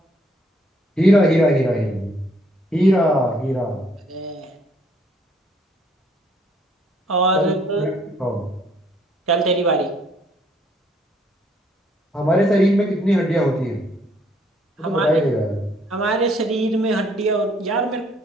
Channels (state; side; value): normal; both; correlation 0.66